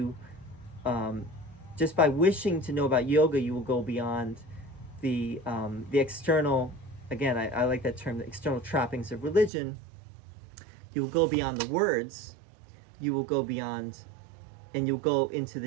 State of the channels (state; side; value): drops out; left; at 9.5 s